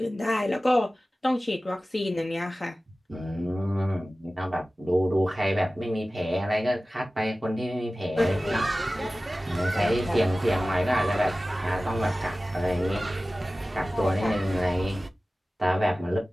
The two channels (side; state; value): both; normal; correlation 0.96